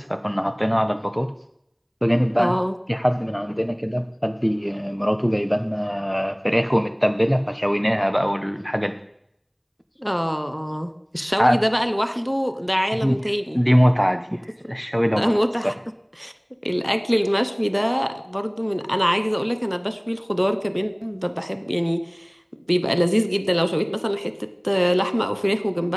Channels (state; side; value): identical; both; correlation 1.00